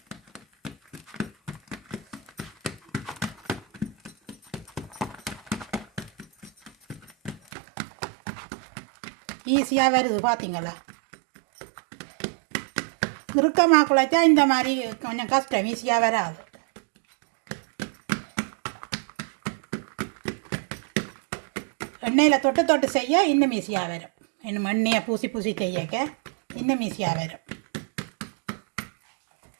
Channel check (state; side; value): drops out; left; at 7.4 s